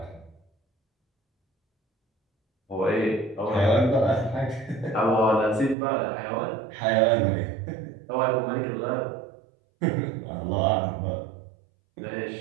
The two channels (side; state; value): left; drops out; at 5.8 s